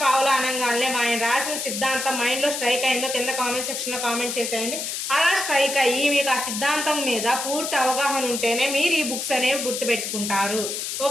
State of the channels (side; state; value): left; noise; hiss, 4 dB below the sound